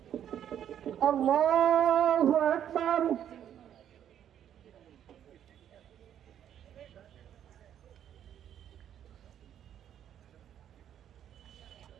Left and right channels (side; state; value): left; quieter; 10.0 dB